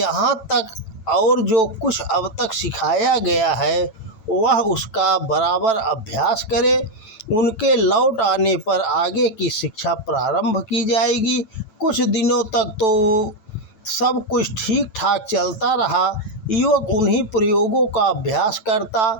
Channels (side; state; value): right; late; 9.0 ms